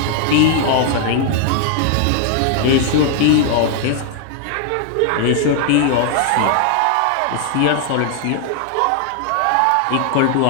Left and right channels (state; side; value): different; both; correlation 0.00